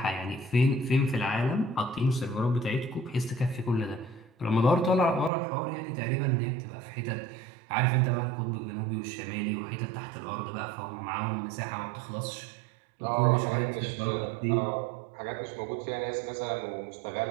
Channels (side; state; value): left; drops out; at 5.3 s